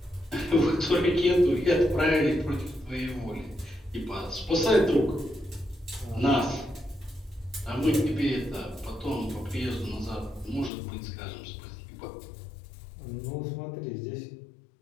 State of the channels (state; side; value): drops out; right; at 10.7 s